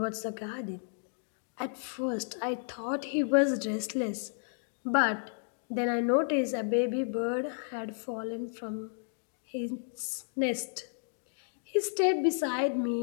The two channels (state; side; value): silent; right; digital silence